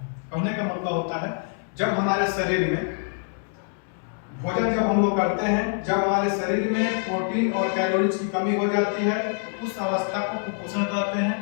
कहने का मतलब होता है जब हमारे शरीर में भोजन जब हम लोग करते हैं, जब हमारे शरीर में प्रोटीन और कैलोरी की कमी हो जाती है तो उस अवस्था को कुपोषण कहते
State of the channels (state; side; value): silent; right; 57 dB below the other